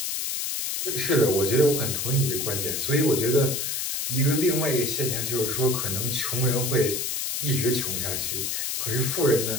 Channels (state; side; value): noise; left; hiss, 1 dB below the sound